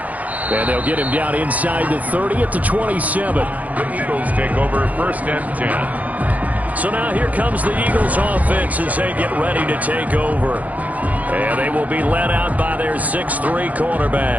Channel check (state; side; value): late; left; 0.076 ms